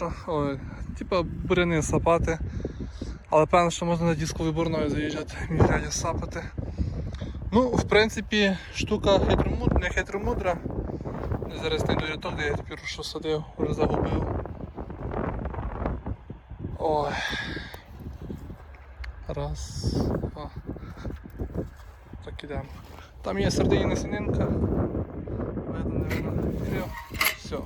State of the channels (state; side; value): identical; both; correlation 1.00